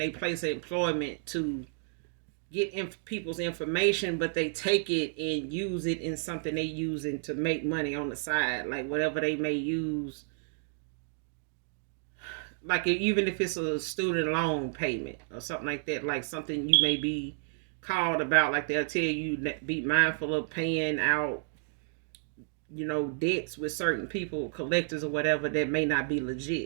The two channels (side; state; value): left; silent; digital silence